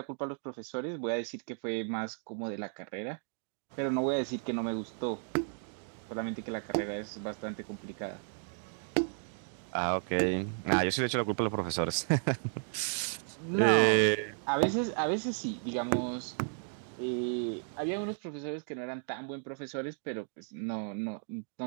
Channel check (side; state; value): left; silent; 55 dB below the other